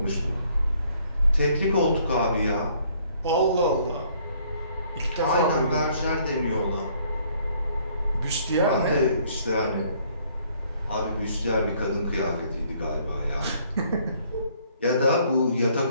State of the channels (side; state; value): both; inverted; correlation -0.63